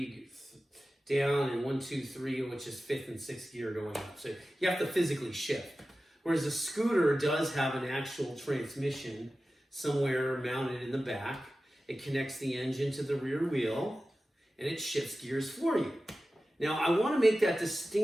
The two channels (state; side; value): normal; both; correlation 0.95